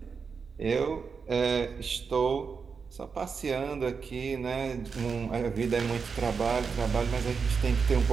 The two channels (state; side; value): quieter; left; 5.5 dB